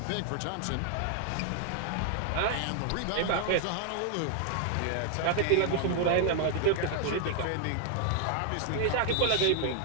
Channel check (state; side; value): different; both; correlation 0.00